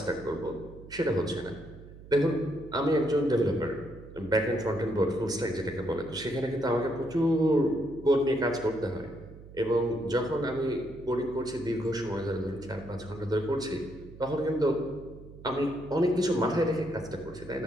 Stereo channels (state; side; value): noise; right; hum, 17 dB below the sound